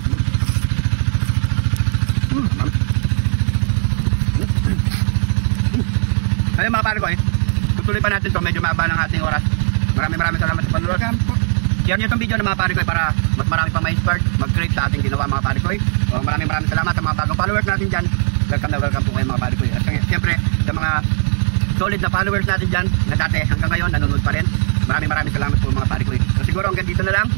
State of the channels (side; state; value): left; silent; digital silence